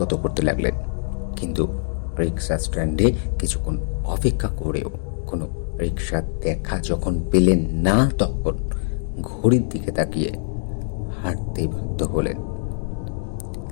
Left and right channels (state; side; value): silent; right; digital silence